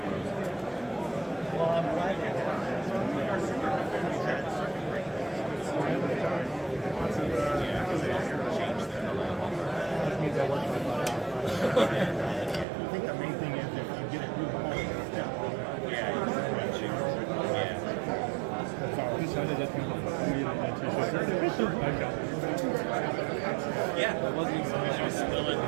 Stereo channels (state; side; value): drops out; left; at 12.7 s